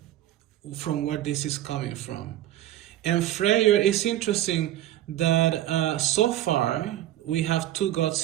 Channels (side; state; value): left; quieter; 13.4 dB